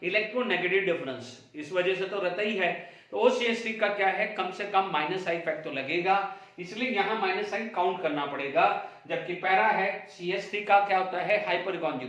electronegative difference, इस वजह से तो रहता ही है। तो OCH3 का क्या है, कम से कम -I इफेक्ट तो लगेगा, इसलिए यहाँ -I काउंट करना पड़ेगा। जबकि पैरा है, CH3 का क्या होता है, हाइपर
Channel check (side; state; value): both; identical; correlation 1.00